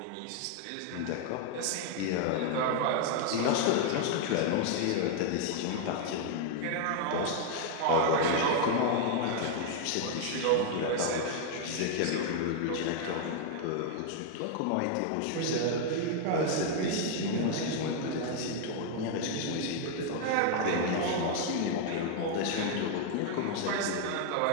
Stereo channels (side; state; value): both; different; correlation 0.00